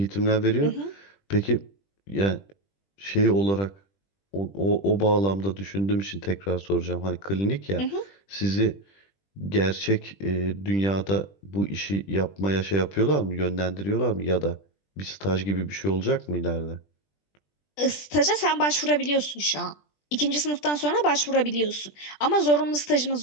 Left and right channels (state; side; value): late; right; 20 ms